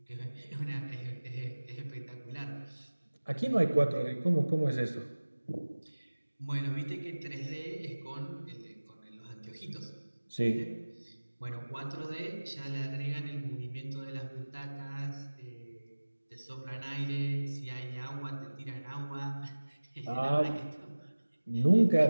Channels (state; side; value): inverted; both; correlation -1.00